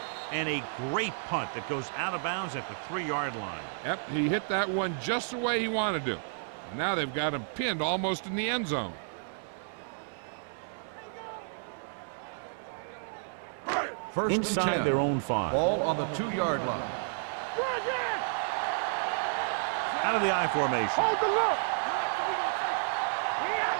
And a great punt that goes out of bounds at the 3-yard line. Yep, he hit that one just the way he wanted to. And now they've got him pinned almost in the end zone. Inside their own 5. Ball on the 2-yard line. Out of the I formation. So we gonna take it. Here I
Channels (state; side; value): silent; left; digital silence